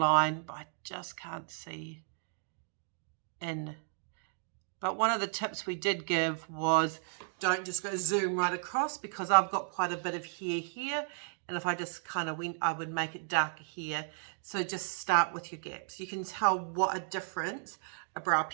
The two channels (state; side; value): silent; left; digital silence